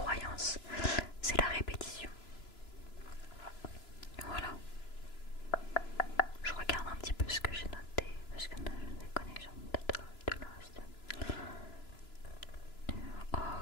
c'est la répétition. Voilà. Je regarde un petit peu ce que j'ai noté parce que j'ai des connexions de l'Insta.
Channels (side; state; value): right; late; 3.0 ms